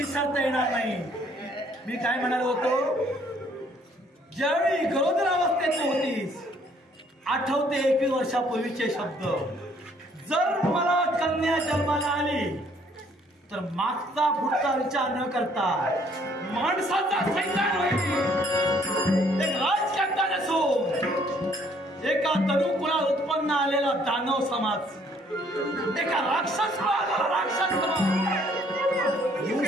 येणार नाही. मी काय म्हणालो होतो ज्यावेळी गरोदरावस्थेत होतीस आठवते 21 वर्षापूर्वीचे शब्द. जर मला कन्या जन्माला आली तर मागचा पुढचा विचार न करता माणसाचा सैतान होईल. एक राजकर्ता नसून एका तरुकुळात उत्पन्न आलेला दानव समाज, एका राक्षस समाज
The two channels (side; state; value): both; normal; correlation 0.63